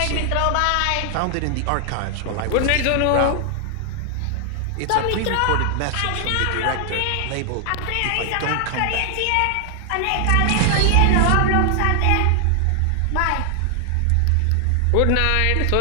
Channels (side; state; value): both; different; correlation 0.00